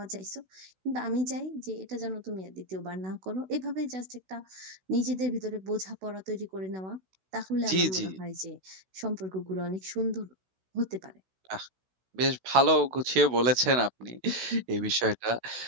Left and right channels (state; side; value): late; left; 16 ms